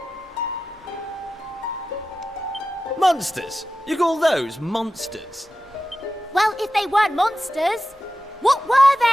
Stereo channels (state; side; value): normal; both; correlation 0.93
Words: Monsters? You call those monsters? Well, if they weren't monsters, what were